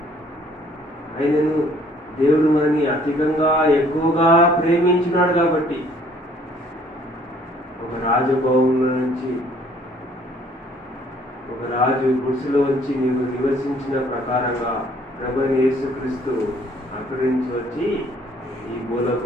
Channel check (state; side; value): normal; both; correlation 0.60